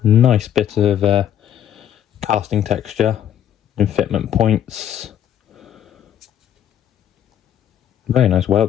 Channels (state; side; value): quieter; right; 10.3 dB